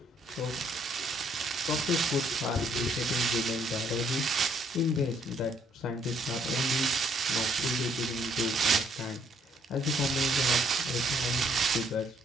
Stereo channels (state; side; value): normal; both; correlation 0.67